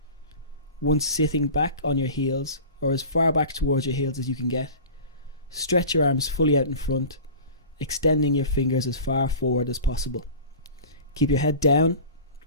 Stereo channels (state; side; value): inverted; both; correlation -0.38